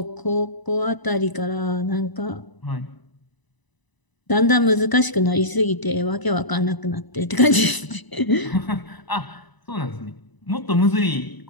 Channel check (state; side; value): late; right; 1.0 ms